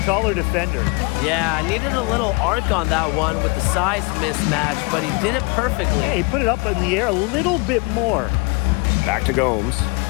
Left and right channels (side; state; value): right; quieter; 29.5 dB